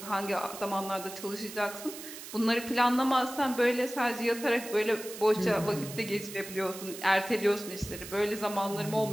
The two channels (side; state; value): right; noise; hiss, 12 dB below the sound